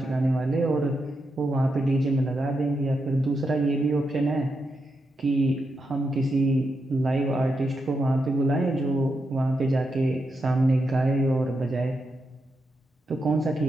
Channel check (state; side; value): normal; both; correlation 0.85